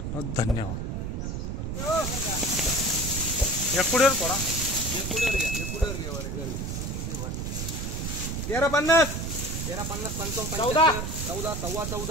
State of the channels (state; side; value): noise; right; rumble, 3 dB below the sound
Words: धन्यवाद। एकुडेर पडा 1350 1350 55 14 14 सव्वा